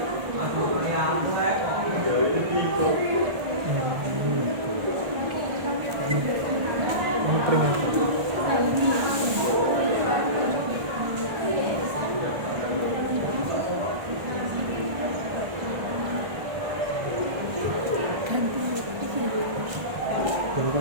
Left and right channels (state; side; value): late; left; 1.4 ms